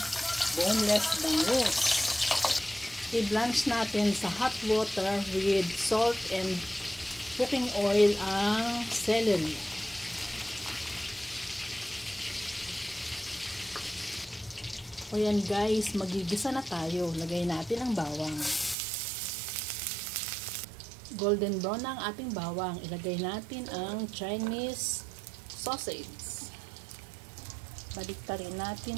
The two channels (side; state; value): left; drops out; at 18.8 s